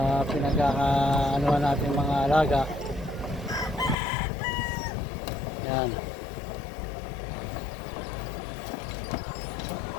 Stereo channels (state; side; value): drops out; right; at 4.0 s